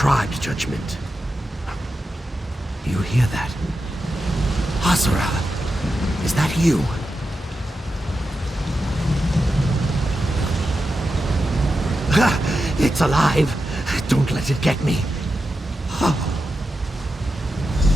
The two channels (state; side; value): normal; both; correlation 0.89